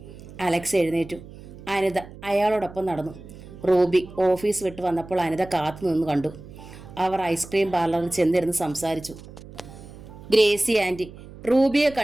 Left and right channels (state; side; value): noise; right; hum, 17 dB below the sound